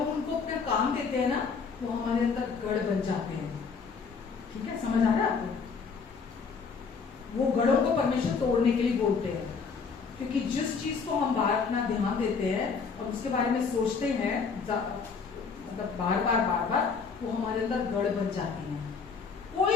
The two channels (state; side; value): quieter; right; 5.4 dB